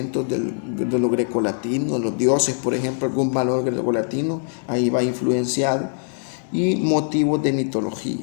de lo grecolatino, los dioses, por ejemplo, algún valor grecolatino, ahí va influenciado, y motivos de mitología.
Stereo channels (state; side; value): silent; right; digital silence